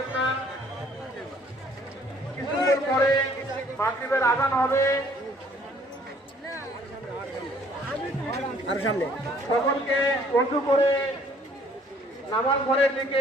না। কিছুক্ষণ পরে মাগরিবের আযান হবে। সকলকে ওযু করে নামাজ ঘরের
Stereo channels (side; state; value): both; normal; correlation 0.60